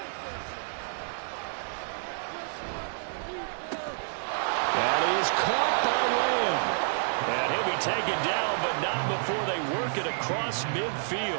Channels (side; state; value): left; silent; digital silence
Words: That is caught by Lamb. And he'll be taken down, but not before they work it across